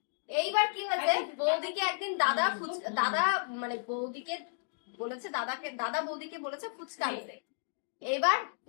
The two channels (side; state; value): right; silent; digital silence